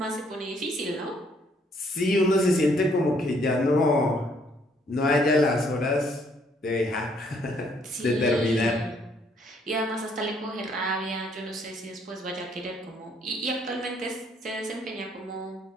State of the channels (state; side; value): normal; both; correlation 0.67